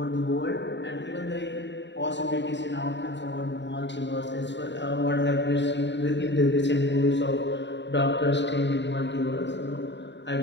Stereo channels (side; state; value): right; late; 0.52 ms